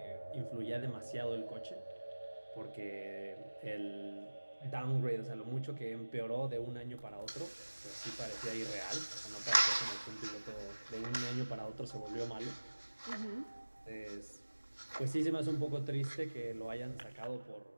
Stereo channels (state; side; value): inverted; both; correlation -1.00